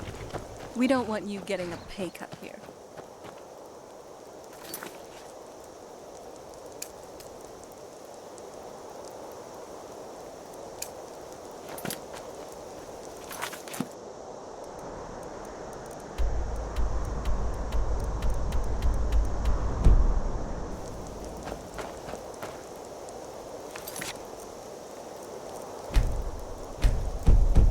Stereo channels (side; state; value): both; identical; correlation 1.00